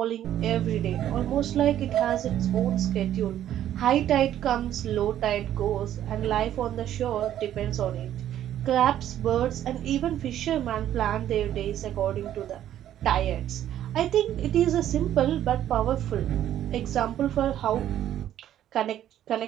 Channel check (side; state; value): left; quieter; 11.5 dB